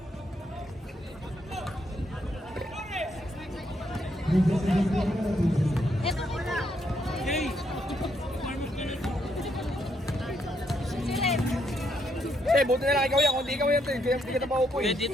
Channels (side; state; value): both; normal; correlation 0.76